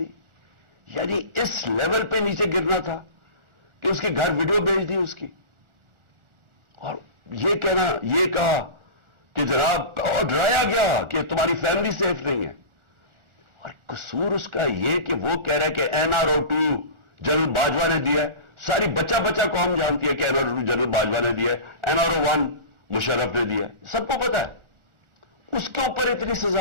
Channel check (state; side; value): late; left; 1.4 ms